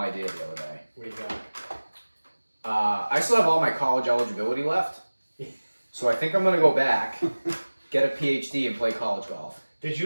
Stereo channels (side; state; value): both; inverted; correlation -1.00